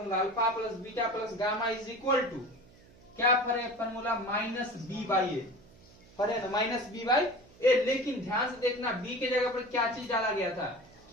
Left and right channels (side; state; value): right; noise; hum, 25 dB below the sound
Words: alpha plus beta plus gamma is equal to क्या पढ़े formula? Minus B by A पढ़े ना, माइनस बी बाई ए। लेकिन ध्यान से देखना, बी के जगह पर क्या चीज डाला गया था?